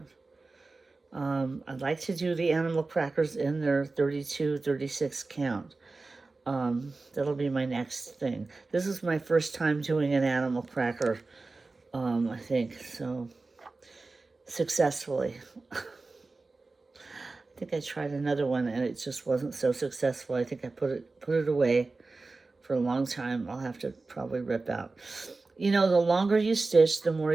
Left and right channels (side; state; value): left; quieter; 3.6 dB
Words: I'd like to do the animal crackers in their 32, 36 count. That'll be my next thing. This is my first time doing an animal cracker, I think, so successfully. I think I tried another one and it just wasn't so successful. I think I put it away for a long time. I'll have to probably rip out. You know, the longer you stitch, the more